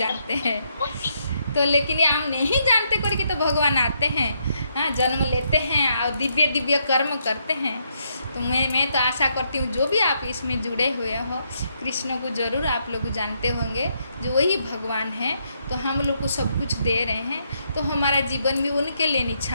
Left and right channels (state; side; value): inverted; both; correlation -0.76